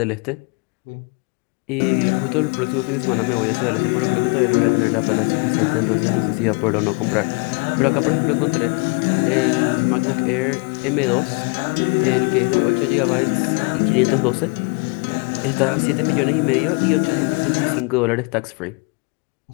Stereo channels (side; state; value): right; quieter; 32.4 dB